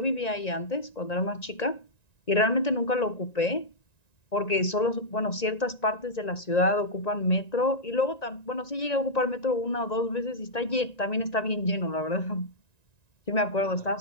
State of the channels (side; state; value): right; late; 1.9 ms